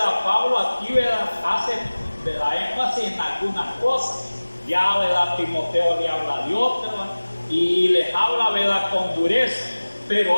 Pablo aquí, ¿verdad?, hace, ¿verdad?, énfasis en algunas cosas. Ya, ¿verdad?, Timoteo le habla de otras y les habla, ¿verdad?, con dureza,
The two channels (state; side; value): inverted; both; correlation -1.00